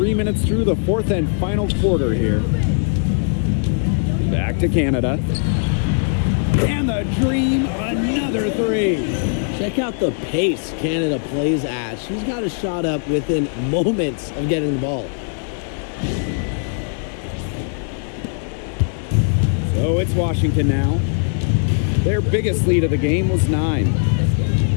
minutes through the fourth and final quarter here. Back to Canada. And the Dream, another 3. Check out the pace Canada plays at. She's got a shot up within moments of getting the ball. So it's Washington now. Their biggest lead of the game was 9.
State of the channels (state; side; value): silent; right; digital silence